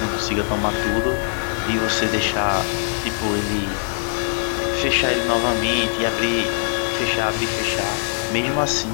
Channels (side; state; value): right; silent; 65 dB below the other